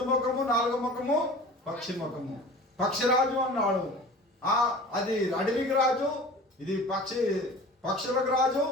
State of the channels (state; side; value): normal; both; correlation 0.40